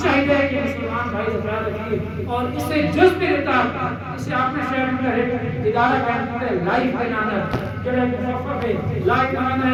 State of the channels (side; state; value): both; identical; correlation 1.00